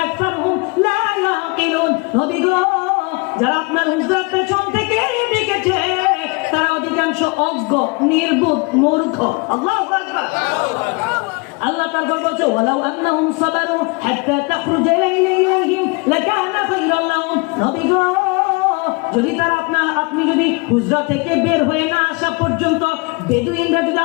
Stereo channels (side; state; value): right; quieter; 29.0 dB